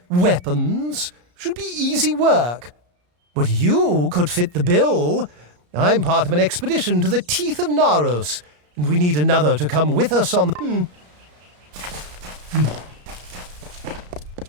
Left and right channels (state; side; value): late; left; 33 ms